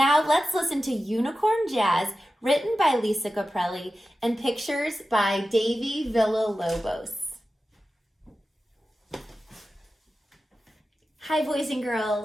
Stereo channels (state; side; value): normal; both; correlation 0.93